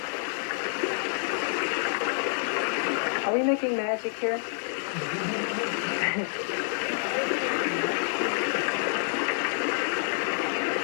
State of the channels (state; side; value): silent; right; digital silence